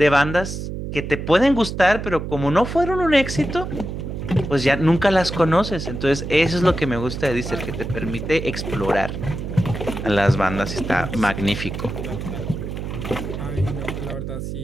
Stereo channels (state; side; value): noise; right; hum, 6 dB below the sound